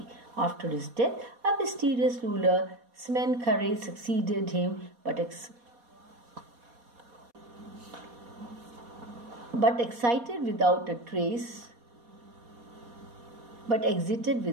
After his death, a mysterious ruler, Smenkhare, succeeded him, but exited without a trace.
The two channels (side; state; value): left; late; 4.2 ms